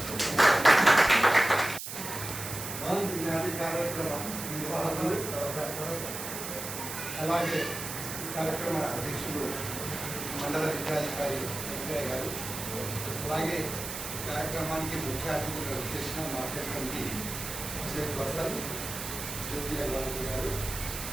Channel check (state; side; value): noise; right; hiss, 7 dB below the sound